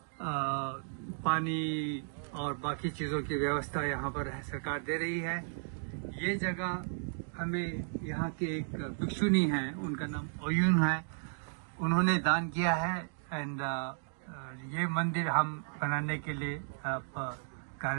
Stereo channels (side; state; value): left; silent; digital silence